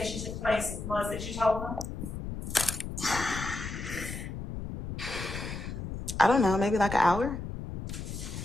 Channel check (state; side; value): noise; left; rumble, 6 dB below the sound